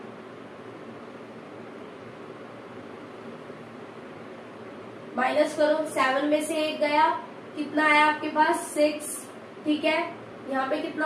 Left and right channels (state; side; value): identical; both; correlation 1.00